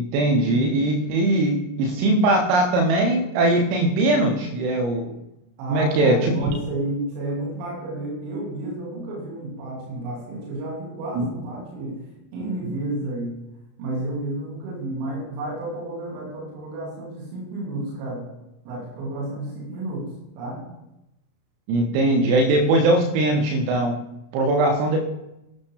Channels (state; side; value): late; left; 34 ms